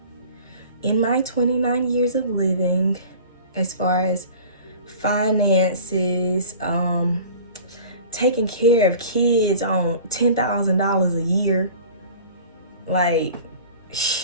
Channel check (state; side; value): inverted; both; correlation -0.42